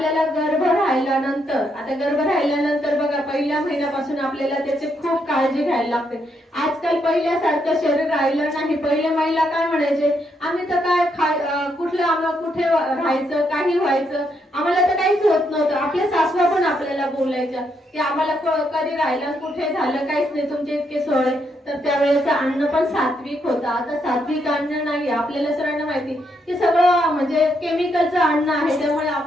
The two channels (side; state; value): both; normal; correlation 0.77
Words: गर्भ राहिल्यानंतर बघा पहिल्या महिन्यापासून आपल्याला त्याची खूप काळजी घ्यायला लागते. आजकाल पहिल्यासारखं शरीर राहिलं नाही. पहिल्या महिला काय म्हणायचे, आम्ही तर काय कुठे राहायचं, काही व्हायचं, आम्हाला तर काहीच होत नव्हतं. आपल्या सासवा पण आपल्याला बोलायच्या की आम्हाला कधी राहिलं कुठे झालं काहीच नाही, तुमचे इतके सोय. तर त्यावेळेचं अन्न पण सात्विक होतं. आता सात्विक अन्न नाही. आपल्याला सगळ्यांना माहिती की सगळं म्हणजे केमिकलचं अन्न आहे. त्यामुळे